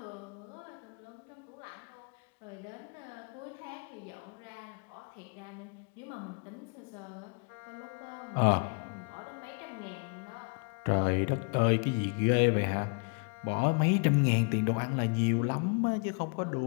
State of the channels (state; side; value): quieter; right; 35.7 dB